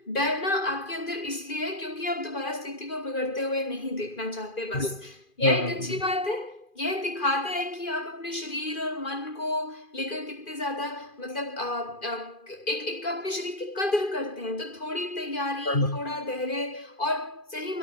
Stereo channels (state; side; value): late; right; 2.4 ms